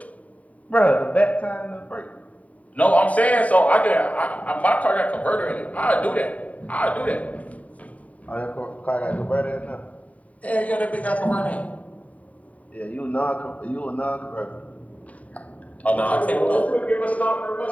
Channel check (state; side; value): late; right; 0.069 ms